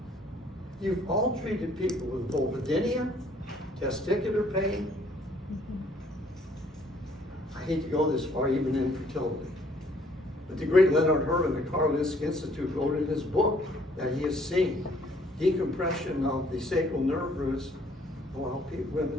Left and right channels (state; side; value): normal; both; correlation 0.62